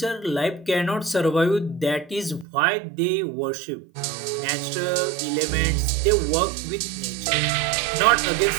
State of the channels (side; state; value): left; drops out; at 2.5 s